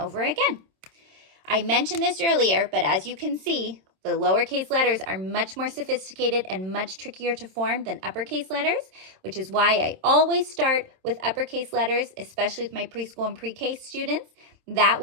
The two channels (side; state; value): left; late; 27 ms